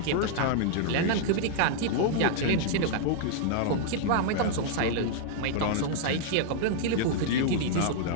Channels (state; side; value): different; both; correlation -0.01